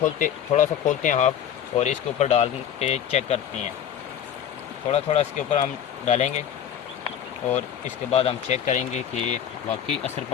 थोड़ा सा खोलते हैं हाफ और इसके ऊपर डाल के चेक करते हैं। थोड़ा इसके ऊपर हम डालेंगे और इसके बाद हम चेक करेंगे कि वाकई असर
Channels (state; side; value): quieter; right; 9.4 dB